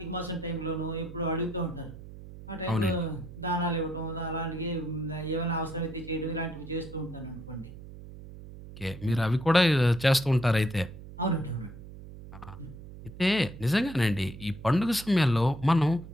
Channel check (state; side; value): noise; right; hum, 15 dB below the sound